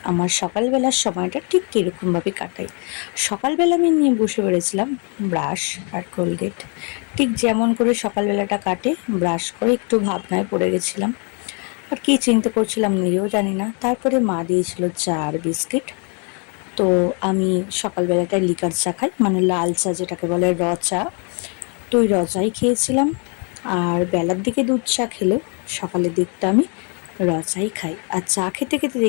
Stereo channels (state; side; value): quieter; right; 37.3 dB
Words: আমার সকালবেলার সময়টা ঠিক কীরকমভাবে কাটাই। সকালবেলা আমি নিয়ে বসে পড়েছিলাম ব্রাশ আর কোলগেট। ঠিক যেমন করে সকালবেলাটা কাটে, ব্রাশ করে একটু ভাবনায় পড়ে গেছিলাম। আর কী চিন্তা করছিলাম নিজেও জানি না। তারপরে মা দিয়েছিল চা আর বিস্কিট। তো আমি সকালবেলাটায় লিকার চা খাই, মানে লাল চা যেটাকে বলে, র চা। তো ওই র চাই খেয়েছিলাম। আর বেলার দিকে দুধ চা খেলেও সকালের দিকটা আমি র চাই খাই। আর চা খেতে খেতে